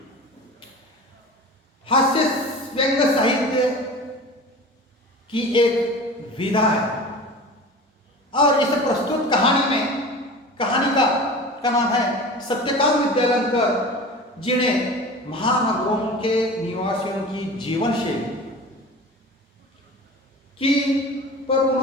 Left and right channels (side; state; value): both; normal; correlation 0.36